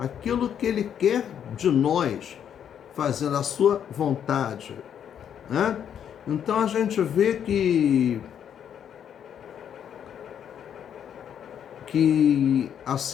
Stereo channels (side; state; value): right; quieter; 8.9 dB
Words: que Ele quer de nós, fazendo a sua vontade. Né? Então a gente vê que